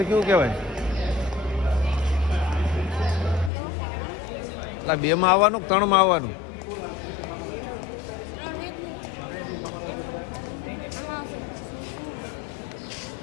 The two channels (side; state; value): right; drops out; at 3.5 s